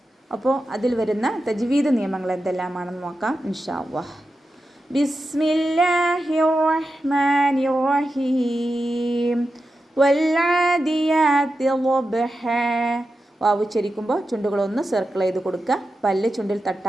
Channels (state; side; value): normal; both; correlation 0.90